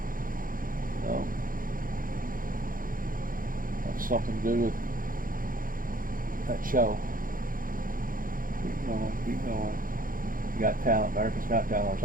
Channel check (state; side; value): late; left; 0.40 ms